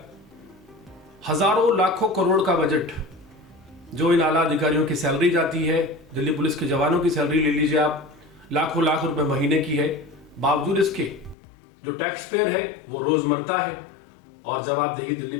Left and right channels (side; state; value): right; drops out; at 11.4 s